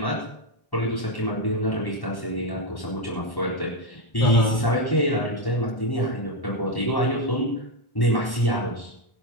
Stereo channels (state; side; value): late; right; 1.1 ms